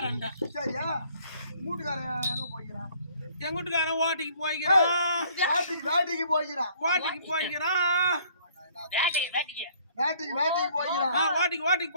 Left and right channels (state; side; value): inverted; both; correlation -0.59